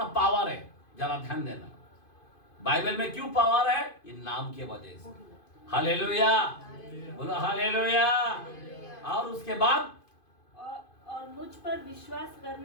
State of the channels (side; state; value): right; late; 2.5 ms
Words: पावर है, जरा ध्यान देना। बाइबल में क्यों पावर है? ये नाम के वजह से। हालेलुया, बोलो हालेलुया। और उसके बाद और मुझ पर विश्वास